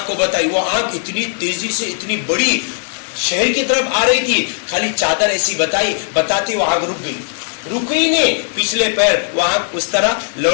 کو بتائی, وہ آگ اتنی تیزی سے اتنی بڑی شہر کی طرف آ رہی تھی. خالی چادر ایسی بتائی, بتاتی وہ آگ رک گئی. رکی نہیں, پچھلے پیر وہ آگ اس طرح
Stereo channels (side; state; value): right; silent; digital silence